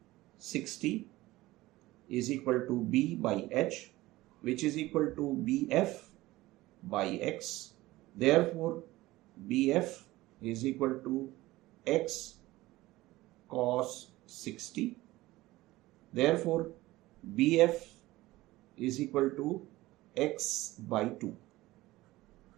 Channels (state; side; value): quieter; left; 18.2 dB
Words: 60 is equal to B by H, which is equal to BF by X. Therefore, BF is equal to X cos 60. Therefore, BF is equal to X by 2.